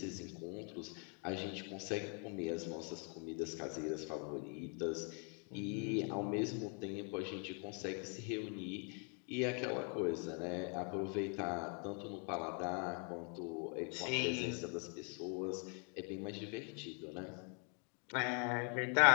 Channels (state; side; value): quieter; right; 39.0 dB